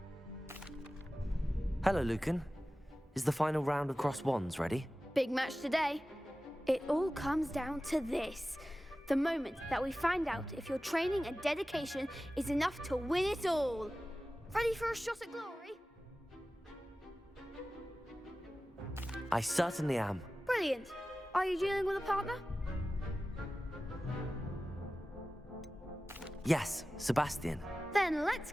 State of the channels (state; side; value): normal; both; correlation 0.95